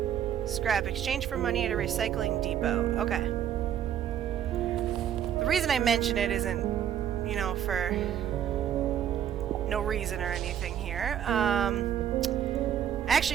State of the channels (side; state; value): left; quieter; 9.9 dB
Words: Scrap. Exchange for money at a recycling depot. Okay. The reason I mention it isn't, you know, for no reason or anything here. I